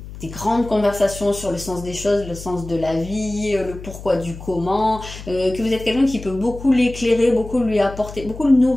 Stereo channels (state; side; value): noise; left; hum, 13 dB below the sound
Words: grandes conversations sur le sens des choses, le sens de la vie, le pourquoi du comment, que vous êtes quelqu'un qui peut beaucoup l'éclairer, beaucoup lui apporter, beaucoup le